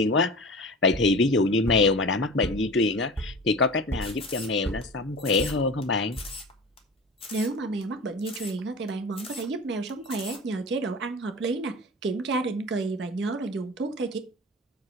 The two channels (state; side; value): normal; both; correlation 0.34